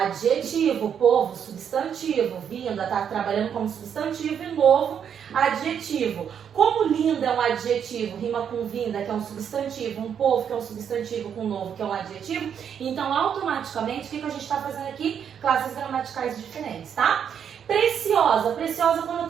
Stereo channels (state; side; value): quieter; left; 8.1 dB